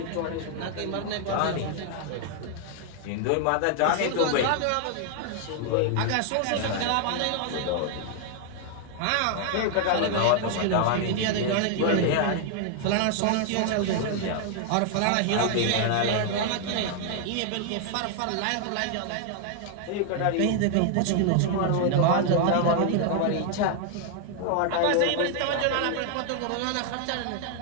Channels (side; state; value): both; different; correlation 0.00